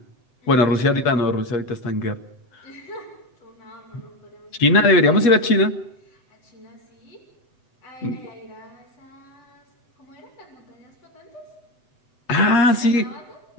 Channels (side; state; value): right; late; 7.9 ms